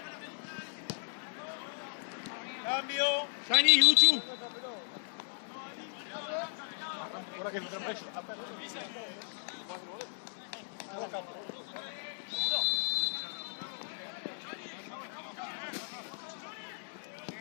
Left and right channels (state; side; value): silent; right; 54 dB below the other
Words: Cambio. Sani, Uchu. Ahora que me traen preso.